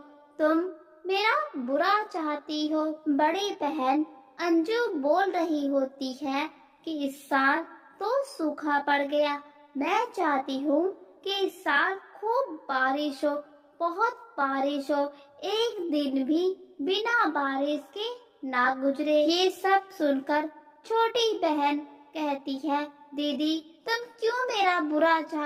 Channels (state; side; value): identical; both; correlation 1.00